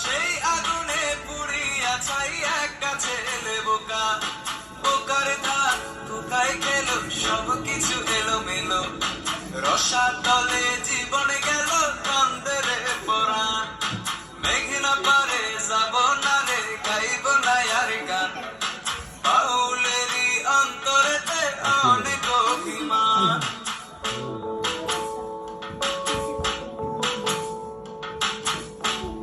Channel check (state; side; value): identical; both; correlation 1.00